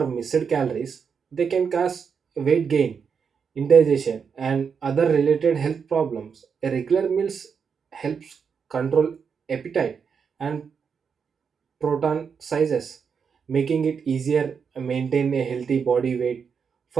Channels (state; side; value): quieter; left; 6.3 dB